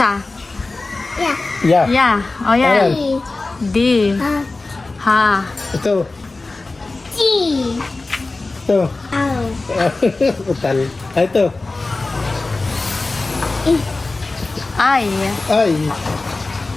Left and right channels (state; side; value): quieter; right; 3.4 dB